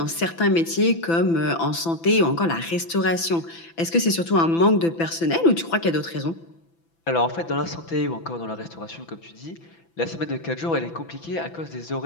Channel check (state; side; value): late; right; 6.0 ms